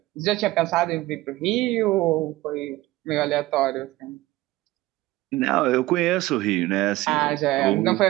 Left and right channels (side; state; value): left; quieter; 17.9 dB